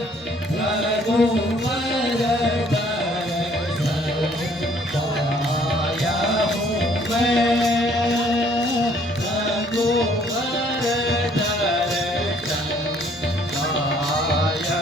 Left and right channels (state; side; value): normal; both; correlation 0.61